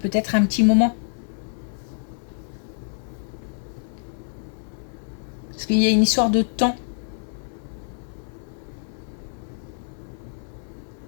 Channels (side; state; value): right; silent; digital silence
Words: un petit moment. Parce qu'il y a une histoire de temps.